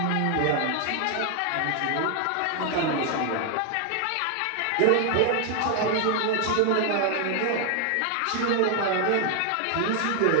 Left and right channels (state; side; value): different; both; correlation 0.00